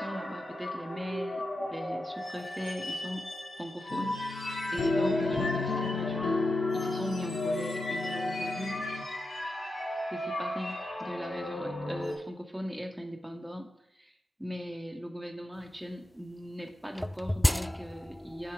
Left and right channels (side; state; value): both; normal; correlation 0.90